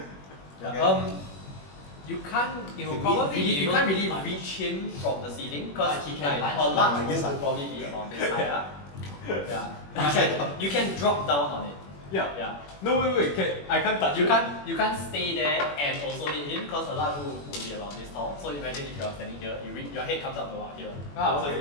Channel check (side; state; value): right; late; 21 ms